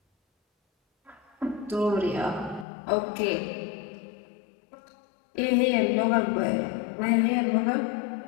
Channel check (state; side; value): drops out; right; at 2.7 s